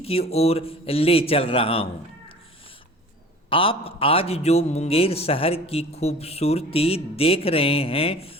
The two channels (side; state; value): both; normal; correlation 0.44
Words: की ओर ले चल रहा हूँ। आप आज जो मुंगेर शहर की खूबसूरती देख रहे हैं